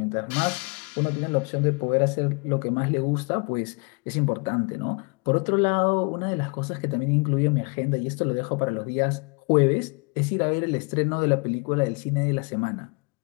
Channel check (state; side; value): quieter; right; 33.4 dB